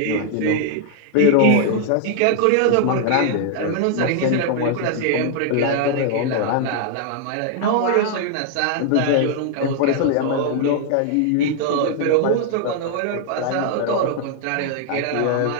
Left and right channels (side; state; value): both; different; correlation 0.00